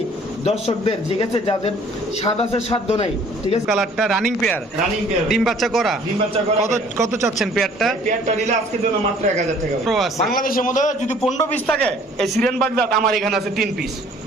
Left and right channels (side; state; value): both; normal; correlation 0.55